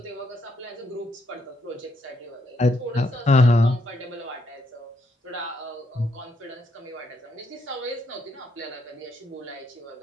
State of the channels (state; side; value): normal; both; correlation 0.75